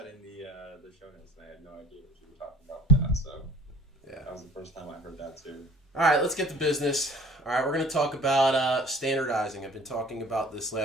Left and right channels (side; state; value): both; normal; correlation 0.48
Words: the show notes, and I had no idea what you were talking about with that. So Yeah, that was the first time I heard that too. All right, let's get to business. All right, we're going to talk about standardizing. I've been talking about this